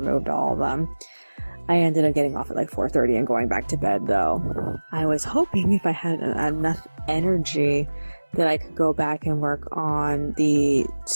all of them. I ended up getting off at like 4:30 and going back to bed, though. I was hoping if I had enough energy that I could go back and work on the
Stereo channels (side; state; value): both; inverted; correlation -1.00